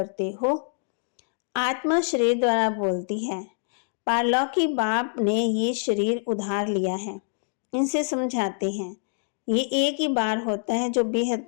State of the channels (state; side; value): silent; right; digital silence